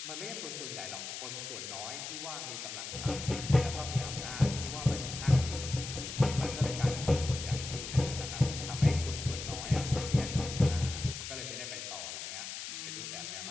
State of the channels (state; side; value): noise; left; hiss, 7 dB below the sound